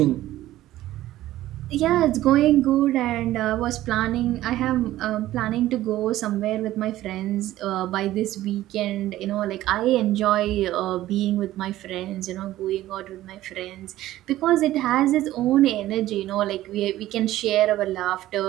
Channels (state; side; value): quieter; left; 14.8 dB